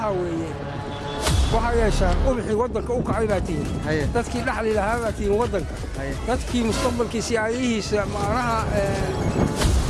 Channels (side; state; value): both; identical; correlation 1.00